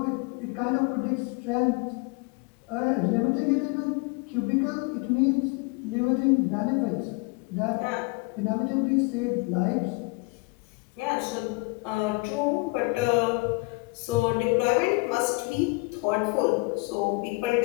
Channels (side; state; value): right; quieter; 27.9 dB